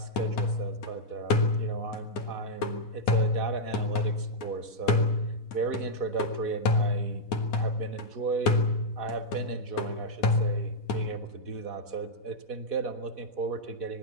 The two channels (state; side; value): late; right; 4.1 ms